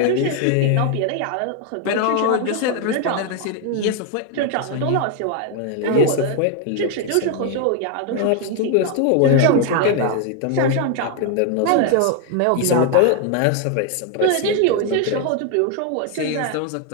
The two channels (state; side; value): different; both; correlation 0.00